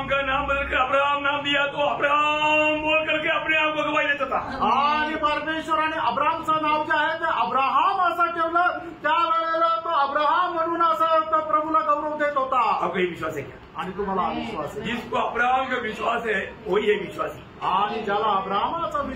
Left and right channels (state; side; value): identical; both; correlation 1.00